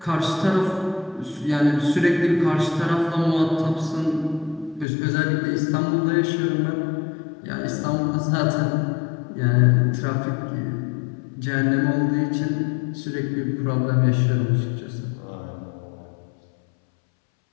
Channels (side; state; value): right; drops out; at 4.9 s